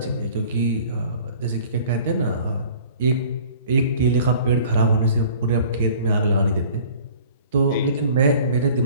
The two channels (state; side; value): inverted; both; correlation -0.48